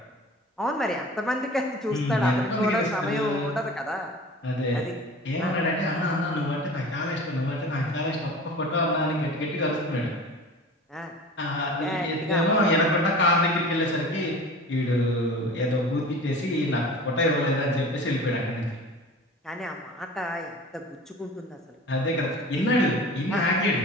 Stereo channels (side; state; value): both; normal; correlation 0.39